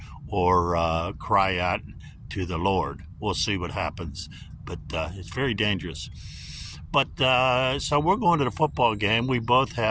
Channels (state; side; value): identical; both; correlation 1.00